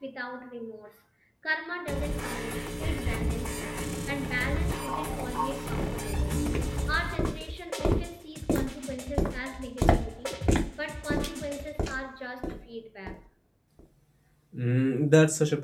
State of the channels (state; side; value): identical; both; correlation 1.00